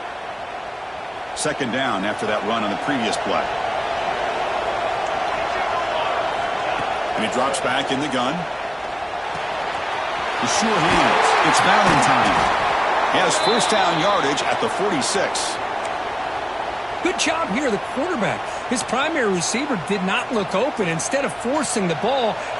Second down after that run on the previous play. And he drops back in the gun. The sure hands. It's Valentine. He has first down yardage at the 46. Good job here, the quarterback. His primary receiver did not look open. Instead of forcing the ball,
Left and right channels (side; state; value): both; identical; correlation 1.00